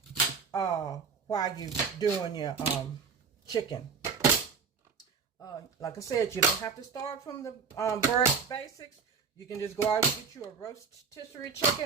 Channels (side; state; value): left; quieter; 5.5 dB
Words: while you're doing your chicken. Like I said, you don't have to start from the very basics. You can just go out and get you a rotisserie